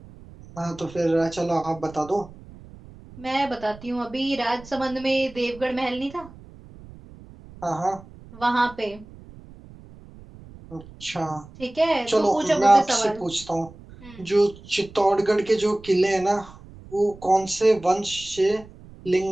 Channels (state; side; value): noise; right; rumble, 20 dB below the sound